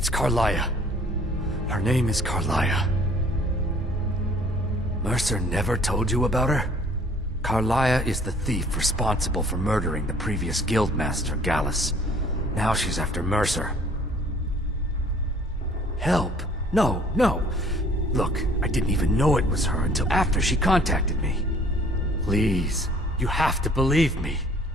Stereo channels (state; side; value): normal; both; correlation 0.55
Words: Carlia. Her name is Carlia. Mercer never told you about her? Carlia is the thief responsible for murdering the previous guildmaster, Gallus. Now she's after Mercer. Help? No. Look, I didn't even know it was her until after she contacted me. Please, you have to believe me.